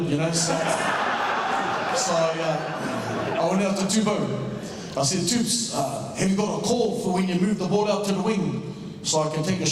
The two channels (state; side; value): identical; both; correlation 1.00